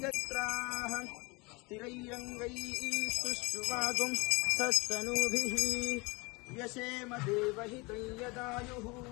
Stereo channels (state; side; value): quieter; right; 26.7 dB